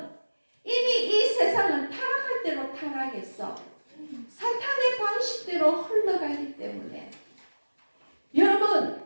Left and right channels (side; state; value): both; inverted; correlation -1.00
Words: 이미 이 세상은 타락할 대로 타락했어. 사탄의 방식대로 흘러가기 때문에 여러분,